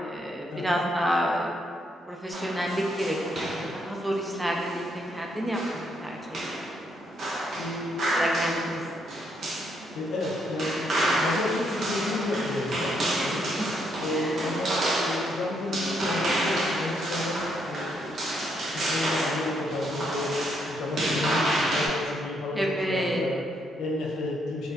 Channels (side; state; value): both; normal; correlation 0.75